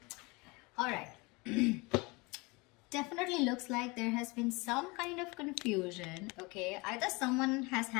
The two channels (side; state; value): right; quieter; 26.1 dB